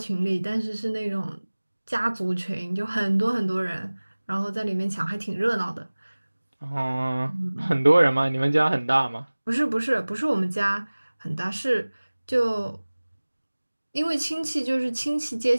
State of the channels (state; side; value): inverted; both; correlation -1.00